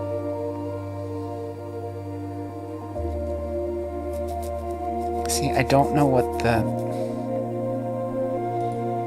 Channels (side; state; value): both; identical; correlation 1.00